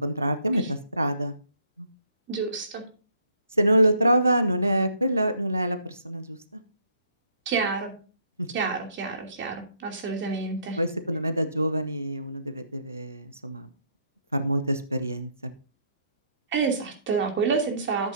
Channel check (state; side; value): inverted; both; correlation -0.67